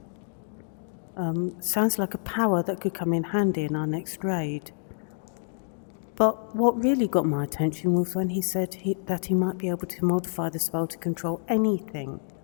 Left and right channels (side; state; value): right; silent; digital silence